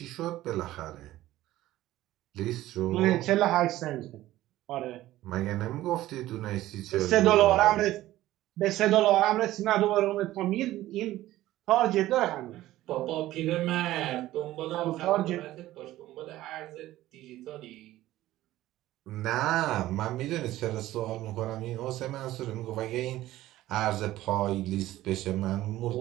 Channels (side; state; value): left; quieter; 15.4 dB